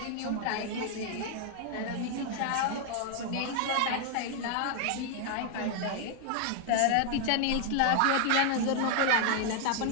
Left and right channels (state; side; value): different; both; correlation 0.00